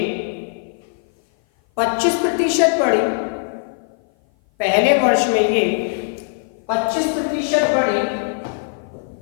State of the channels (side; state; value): right; silent; 56 dB below the other